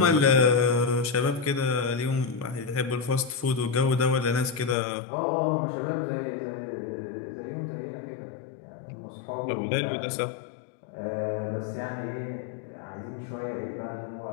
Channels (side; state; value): right; drops out; at 4.8 s